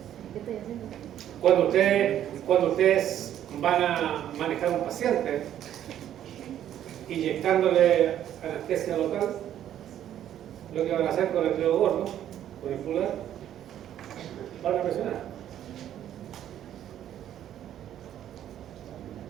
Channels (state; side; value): quieter; left; 11.0 dB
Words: ¿Qué estoy haciendo? Cuando ustedes van a manejar a un paciente inyectándole anestesia local, lo que van a hacer con el dedo gordo, con el pulgar, van a presionar.